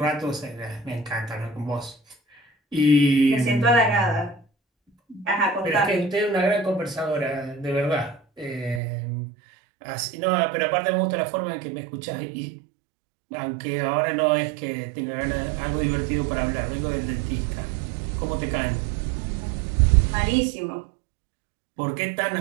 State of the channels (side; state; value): left; drops out; at 8.8 s